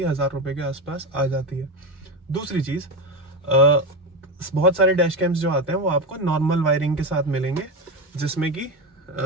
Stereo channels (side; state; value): both; normal; correlation 0.15